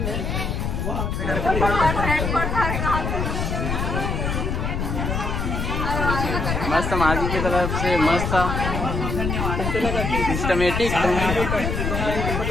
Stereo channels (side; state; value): left; noise; rumble, 1 dB below the sound